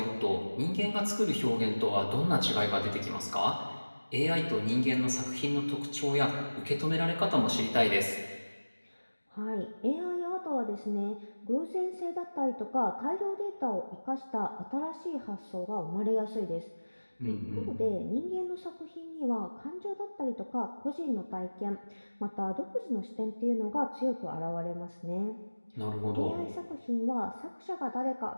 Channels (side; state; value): both; inverted; correlation -1.00